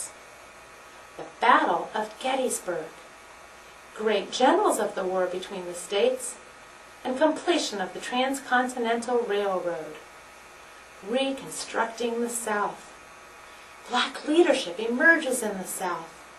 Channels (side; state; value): both; identical; correlation 1.00